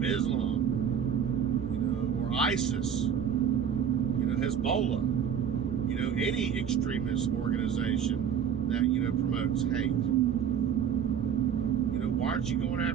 Islam, or ISIS, Hezbollah, any extremist organization that, promotes hate. Why aren't you going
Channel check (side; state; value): left; quieter; 8.1 dB